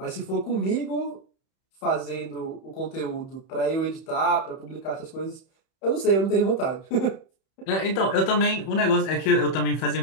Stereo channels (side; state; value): right; late; 31 ms